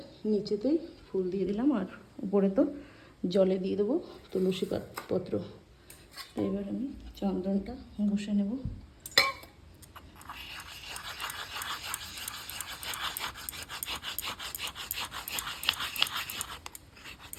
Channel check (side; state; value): both; identical; correlation 1.00